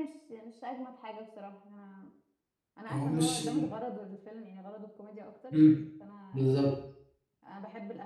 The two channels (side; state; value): both; identical; correlation 1.00